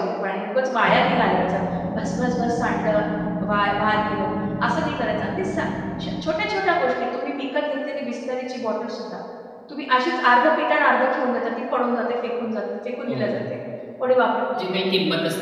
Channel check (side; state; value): both; identical; correlation 1.00